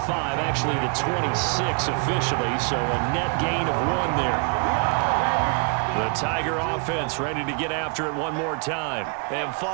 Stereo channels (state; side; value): quieter; left; 37.4 dB